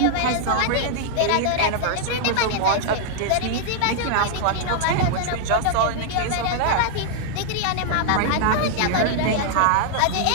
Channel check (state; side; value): different; both; correlation -0.01